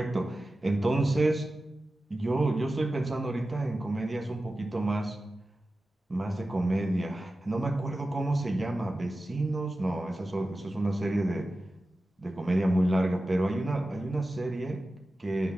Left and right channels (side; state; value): both; normal; correlation 0.94